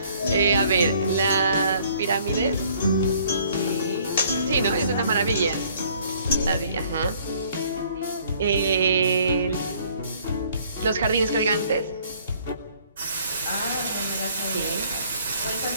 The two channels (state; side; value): inverted; both; correlation -0.60